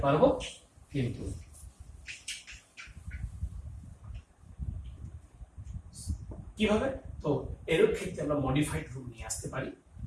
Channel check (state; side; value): identical; both; correlation 1.00